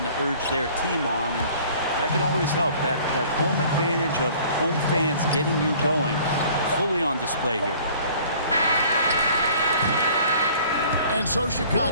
to urge their team on, and that can always help. That home advantage of home fans getting you going, fully on display here. And so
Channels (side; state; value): both; inverted; correlation -0.52